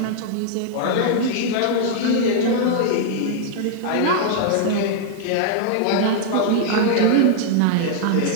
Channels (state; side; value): different; both; correlation -0.01